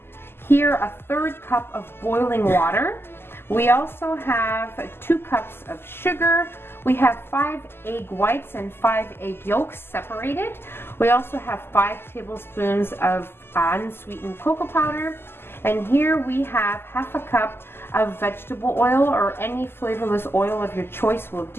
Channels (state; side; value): late; right; 0.11 ms